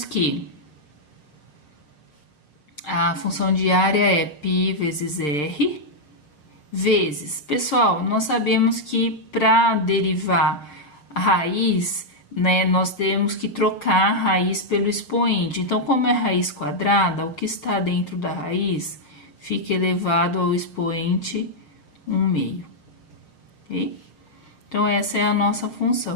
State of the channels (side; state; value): right; late; 6.9 ms